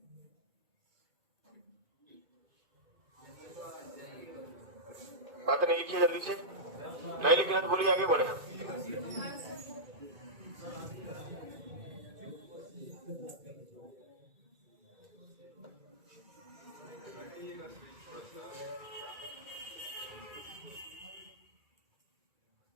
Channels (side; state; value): left; late; 2.3 ms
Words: बात नहीं लिखिए जल्दी से, नहीं लिखना तो बोलिए, आगे बढ़े।